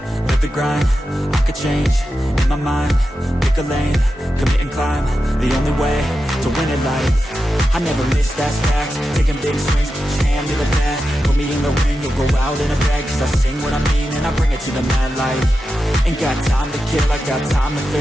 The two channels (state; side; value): normal; both; correlation 0.90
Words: live the grind, I could change, in my mind, pick a lane, commit and climb, the only way to win it life. I never miss, that's fact, taking big swings, put your hand to the bat, put me in the ring, you'll go out in a bag, cause I sing what I mean and I bring it to the mad light. Ain't got time to kill, I got time to